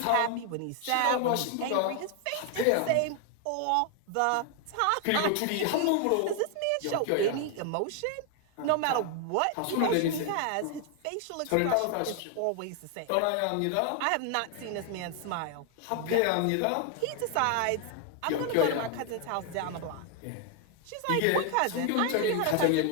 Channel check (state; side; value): different; both; correlation 0.00